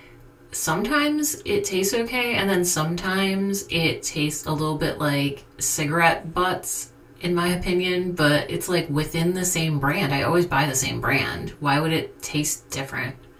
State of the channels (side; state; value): both; identical; correlation 1.00